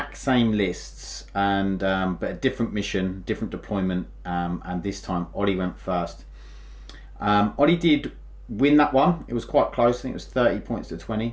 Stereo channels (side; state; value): both; identical; correlation 1.00